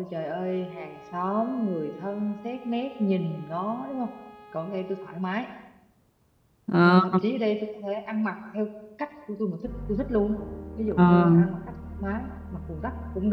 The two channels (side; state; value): both; identical; correlation 1.00